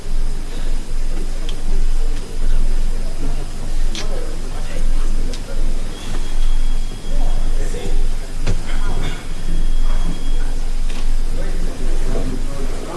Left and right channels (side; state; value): both; identical; correlation 1.00